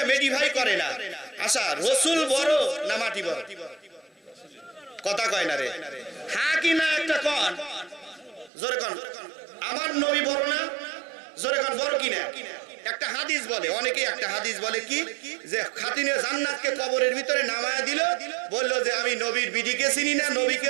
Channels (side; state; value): left; drops out; at 8.5 s